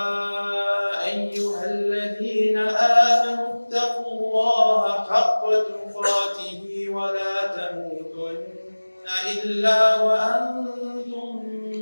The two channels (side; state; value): both; inverted; correlation -1.00